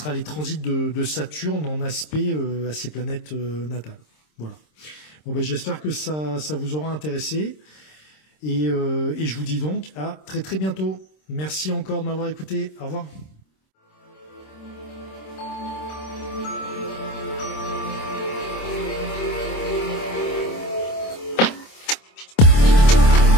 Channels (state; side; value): late; right; 26 ms